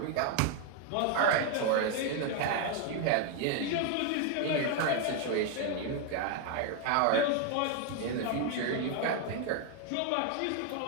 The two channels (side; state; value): both; different; correlation 0.01